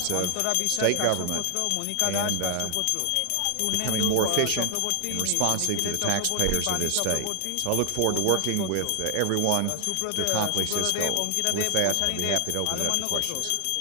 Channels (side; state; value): both; different; correlation 0.00